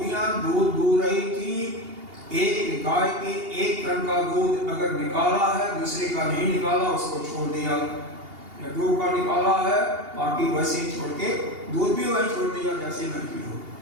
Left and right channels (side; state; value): left; late; 2.8 ms